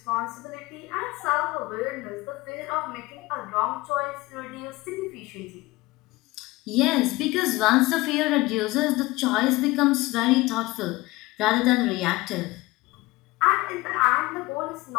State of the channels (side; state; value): right; quieter; 20.6 dB